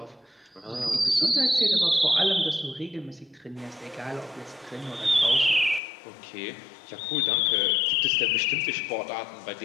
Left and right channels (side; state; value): right; drops out; at 5.8 s